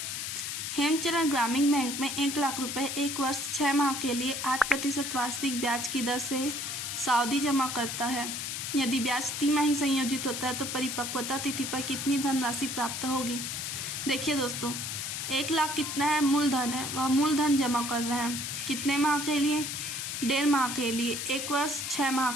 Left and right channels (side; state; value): left; noise; hiss, 4 dB below the sound